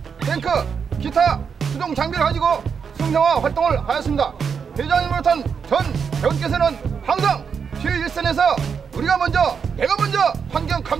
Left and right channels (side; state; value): left; quieter; 6.4 dB